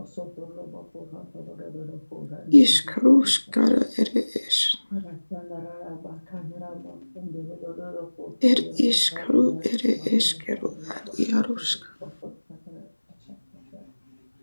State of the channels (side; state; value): both; inverted; correlation -1.00